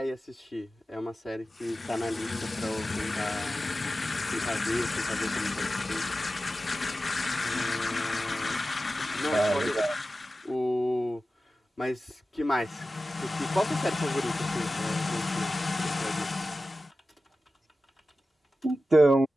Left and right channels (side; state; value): both; normal; correlation 0.94